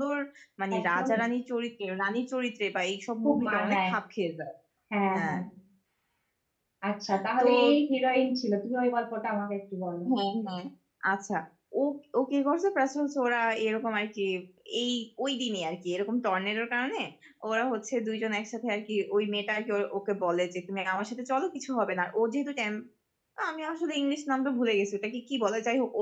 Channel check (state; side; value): identical; both; correlation 1.00